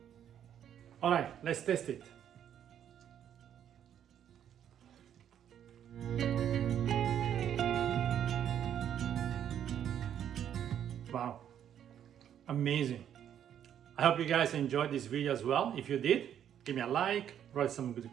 All right, let's test it. Wow, amazing. I hope you guys enjoyed this video as well. If you did, give me a like, write some good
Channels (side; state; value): left; quieter; 9.7 dB